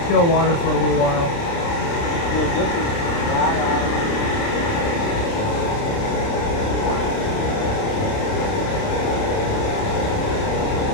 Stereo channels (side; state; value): right; late; 29 ms